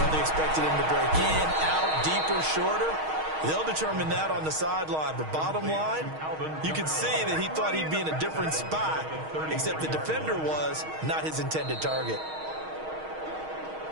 he expected him to break in, out, deeper, shorter, they'll determine that on the sideline. But bottom line, you can see that he thought he'd be in a different spot, except the defender was not his intended target.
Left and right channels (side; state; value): left; late; 6.4 ms